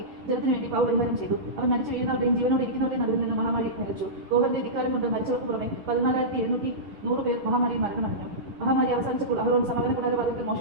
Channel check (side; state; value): left; late; 10 ms